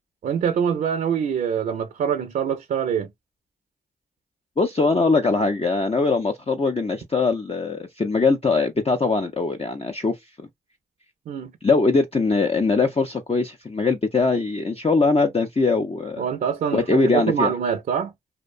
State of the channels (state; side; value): normal; both; correlation 0.55